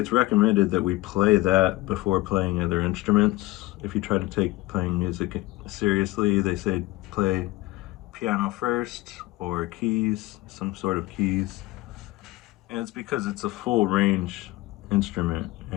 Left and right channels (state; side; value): quieter; right; 19.4 dB